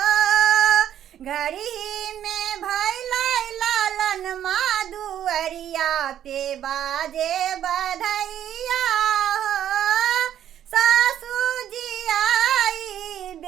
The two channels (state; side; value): quieter; left; 10.7 dB